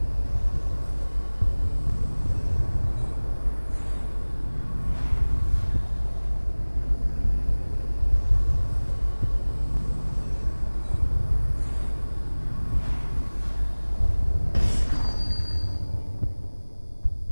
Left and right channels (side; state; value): both; inverted; correlation -1.00